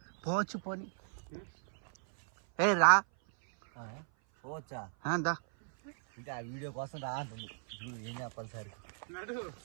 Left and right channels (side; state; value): left; silent; 54 dB below the other